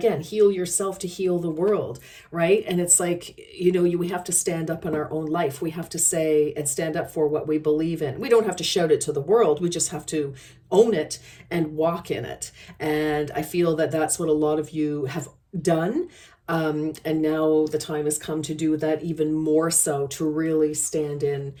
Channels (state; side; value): identical; both; correlation 1.00